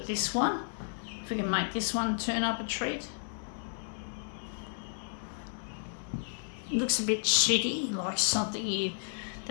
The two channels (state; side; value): silent; right; digital silence